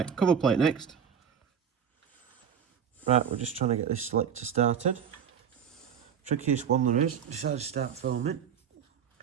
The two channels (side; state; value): left; quieter; 7.9 dB